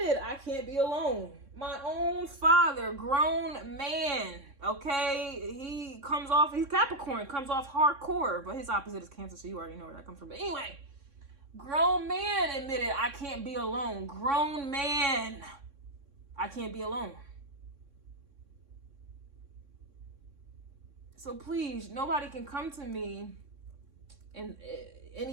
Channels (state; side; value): late; left; 3.6 ms